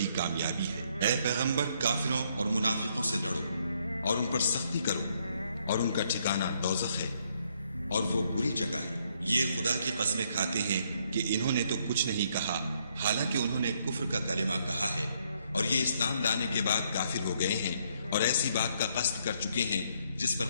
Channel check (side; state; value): both; inverted; correlation -0.71